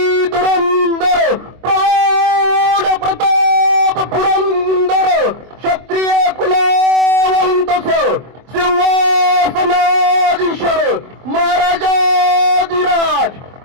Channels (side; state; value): left; late; 24 ms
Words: धुरंधर प्रौढ प्रताप पुरंदर क्षत्रिय कुलावंतस सिंहासनाधीश्वर महाराजाधिराज